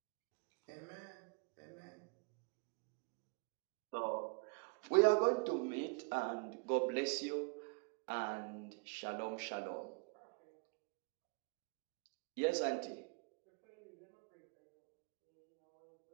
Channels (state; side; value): quieter; left; 33.4 dB